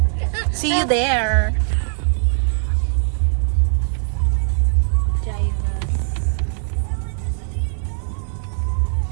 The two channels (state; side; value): silent; left; 58 dB below the other